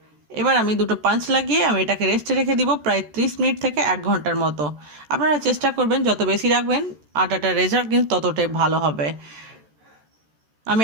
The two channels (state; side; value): late; left; 13 ms